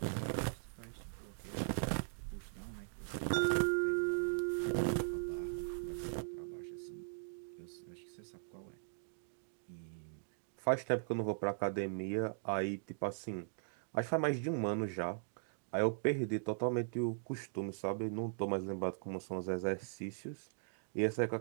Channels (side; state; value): left; silent; digital silence